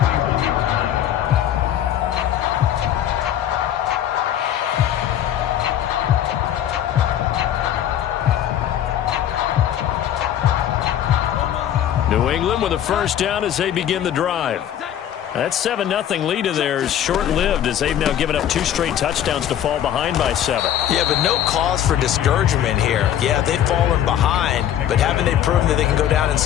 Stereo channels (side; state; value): right; quieter; 10.7 dB